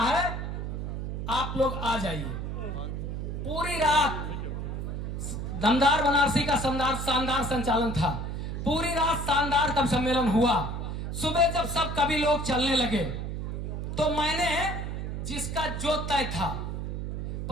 आप लोग आ जाइए। पूरी रात दमदार बनारसी का शानदार संचालन था। पूरी रात शानदार कब सम्मेलन हुआ। सुबह जब सब कवि लोग चलने लगे तो मैंने जिसका जो तय था।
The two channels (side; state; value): right; noise; hum, 4 dB below the sound